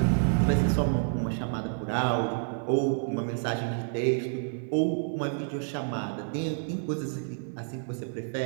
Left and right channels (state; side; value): silent; left; digital silence